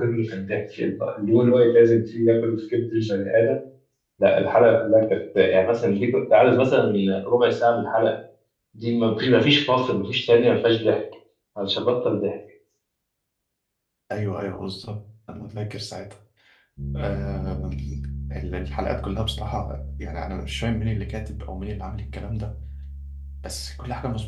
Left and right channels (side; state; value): both; identical; correlation 1.00